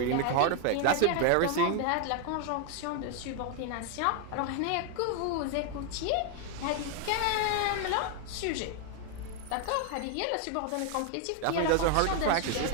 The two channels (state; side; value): different; both; correlation 0.00